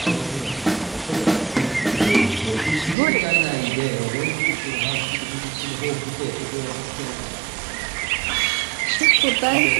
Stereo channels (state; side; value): drops out; left; at 3.0 s